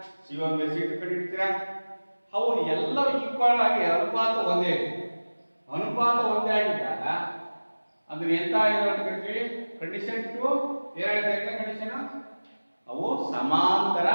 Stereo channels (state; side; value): inverted; both; correlation -1.00